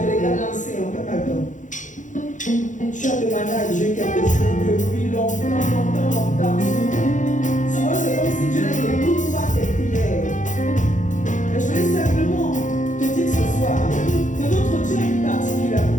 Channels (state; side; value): late; right; 0.36 ms